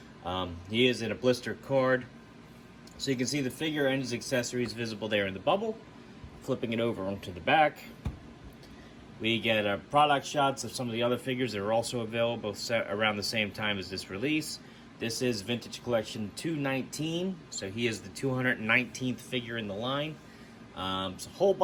He is in a blister card, so you can see the figure and his accessories visible there in the bubble. Flipping it over onto the back, we get product shots of some of the other figures that are also available around the same time as this release. This is Vintage Collection 219, so he is the 219th figure in the line. It's a whole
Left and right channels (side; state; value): both; identical; correlation 1.00